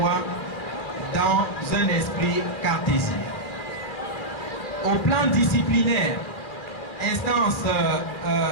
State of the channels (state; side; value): late; right; 2.4 ms